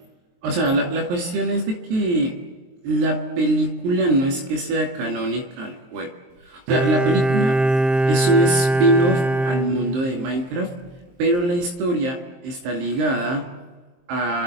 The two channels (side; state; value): left; late; 23 ms